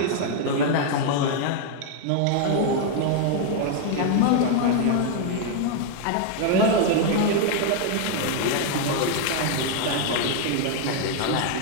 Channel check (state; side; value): different; both; correlation 0.00